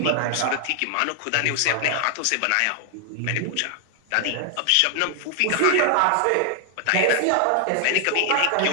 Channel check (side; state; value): both; different; correlation 0.00